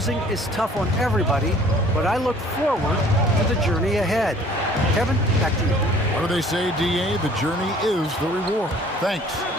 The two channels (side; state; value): both; normal; correlation 0.53